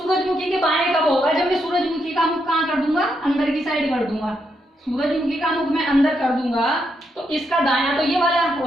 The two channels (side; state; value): both; normal; correlation 0.80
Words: के बाएं कब होगा, जब मैं सूरजमुखी का मुख कहाँ कर दूंगा, अंदर की साइड कर दूंगा। सूरजमुखी का मुख मैं अंदर कर दूंगा तो इसका दायां तो ये वाला